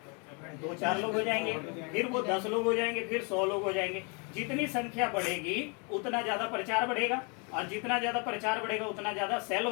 2-4 लोग हो जाएंगे, फिर वो 10 लोग हो जाएंगे, फिर 100 लोग हो जाएंगे। जितनी संख्या बढ़ेगी उतना ज्यादा प्रचार बढ़ेगा, और जितना ज्यादा प्रचार बढ़ेगा उतना ज्यादा सेल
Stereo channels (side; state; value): right; quieter; 34.2 dB